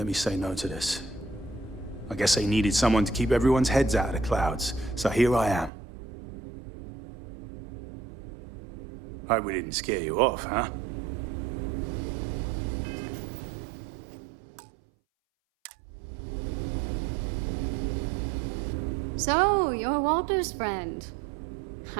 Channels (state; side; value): drops out; left; at 5.7 s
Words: me say no to this. I guess they needed someone to keep everyone's heads out of the clouds, so here I am. Hope we didn't scare you off, huh? So, you're Walter's friend.